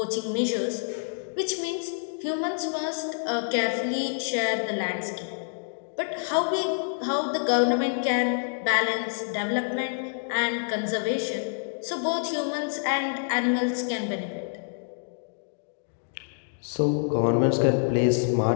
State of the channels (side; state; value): right; silent; digital silence